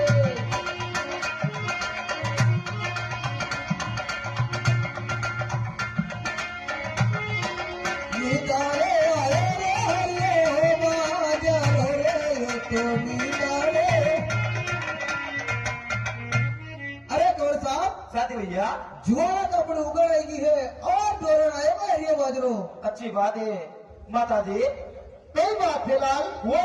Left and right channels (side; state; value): both; identical; correlation 1.00